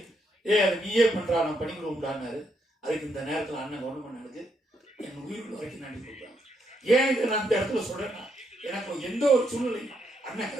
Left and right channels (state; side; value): normal; both; correlation 0.77